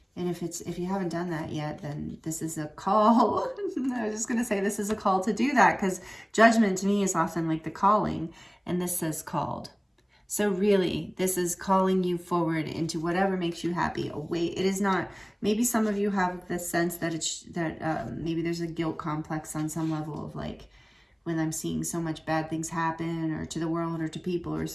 And if you haven't done that yet, then this is a call. I was just going to say this is a call to do that, because judgment to me is often like the calling, and this says called. So really, this is calling you forward into whatever makes you happy. It is not, maybe some of you have the sense that maybe there's a guilt complex on some level of like, when I'm seeing so much bad things happen, or to the world, or to people, or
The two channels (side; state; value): both; identical; correlation 1.00